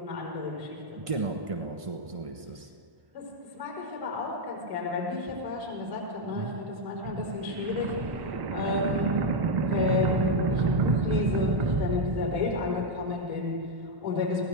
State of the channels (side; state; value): left; late; 1.5 ms